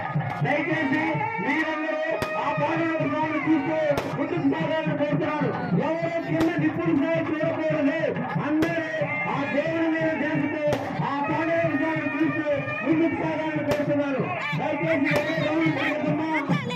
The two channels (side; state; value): both; identical; correlation 1.00